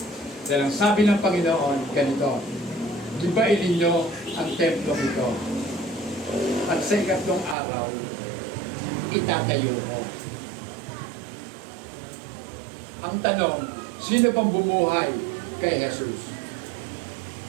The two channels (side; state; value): left; drops out; at 7.6 s